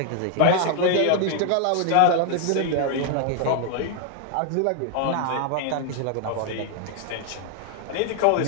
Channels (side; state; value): both; different; correlation 0.00